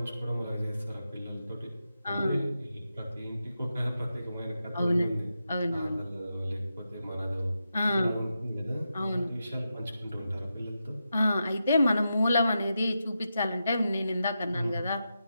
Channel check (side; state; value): both; inverted; correlation -0.88